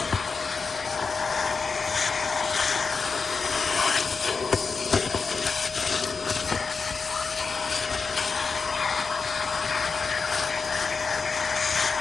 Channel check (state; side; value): quieter; right; 4.9 dB